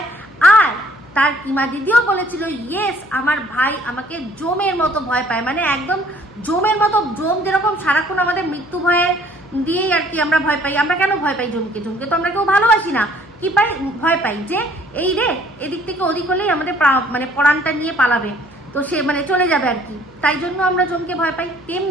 আর তার কিমা দিদিও বলেছিল ইয়েস আমার ভাই আমাকে জমের মতো ভয় পায়। মানে একদম জমের মতো, জম যেরকম সারাক্ষণ আমাদের মৃত্যু ভয়ে দিয়েই আর কি আমরা ভয় পাই। আমরা কেন ভয় পাই জমকে? জমকে তো আমরা কেউ ভালোবাসি না, কি পাই? ভয় পাই যে এই রে এদিক থেকে ওদিক হলেই আমাদের মানে পরাণটা নিয়ে পালাবে, তো সে মানে চলে যাবে আর কি, তাই জন্য আমরা জমকে ভয় পাই।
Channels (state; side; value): noise; left; hum, 26 dB below the sound